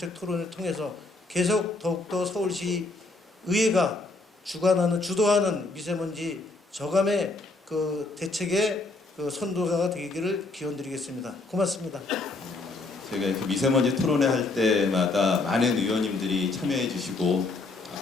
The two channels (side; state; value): right; quieter; 3.3 dB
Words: 토론을 통해서 계속 더욱더 서울시 의회가 주도하는 미세먼지 저감의 그 대책의 그 선도자가 되기를 기원드리겠습니다. 고맙습니다. 저희가 이렇게 미세먼지 토론회 할 때마다 많은 의원님들이 참여해 주시고,